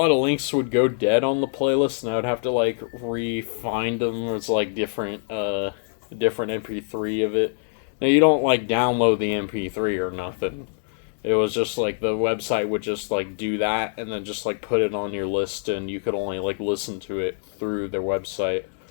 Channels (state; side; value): silent; right; 62 dB below the other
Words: of links would go dead on the playlist, and I would have to, like, re-find them. It's, like, different MP3 of it. Now, you don't, like, download the MP3 or nothing. It was just, like, the website would just, like, do that, and then just, like, put it on your list, and you could only, like, listen to it through their website.